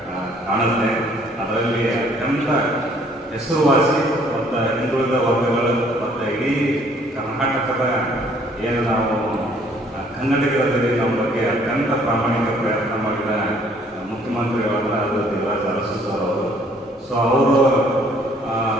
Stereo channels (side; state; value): both; normal; correlation 0.61